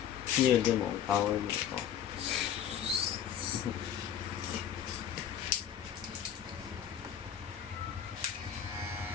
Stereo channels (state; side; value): quieter; right; 9.4 dB